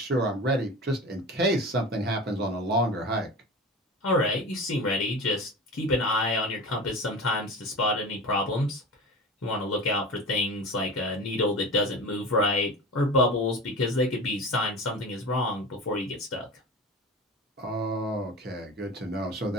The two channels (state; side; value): normal; both; correlation 0.32